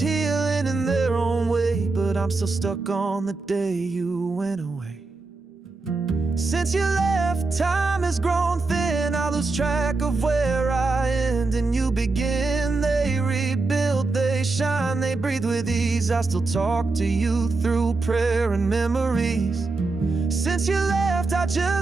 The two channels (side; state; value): left; quieter; 3.6 dB